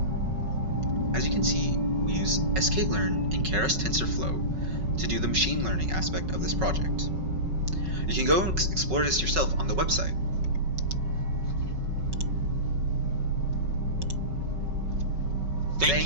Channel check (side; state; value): left; late; 5.3 ms